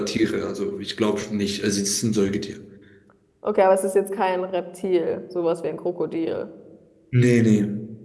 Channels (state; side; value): identical; both; correlation 1.00